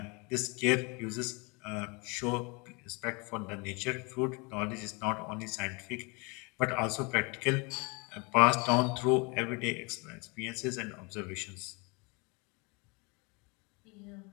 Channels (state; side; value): quieter; right; 29.7 dB